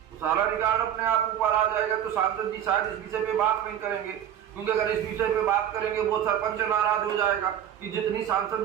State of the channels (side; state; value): left; quieter; 10.1 dB